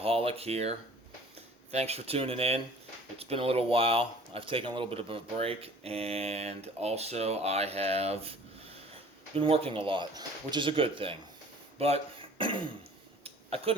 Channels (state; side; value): normal; both; correlation 0.49